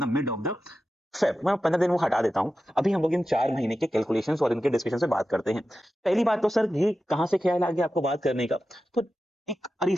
the mid of the Feb. मैं 15 दिन वो हटा देता हूँ, अभी हम लोग इन 4 महीने के कैलकुलेशंस और इनके डिस्कशन से बात करते हैं। पहली बात तो सर ये कहाँ से ख्याल आ गया आपको बात करने का? तो एक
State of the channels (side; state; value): both; normal; correlation 0.92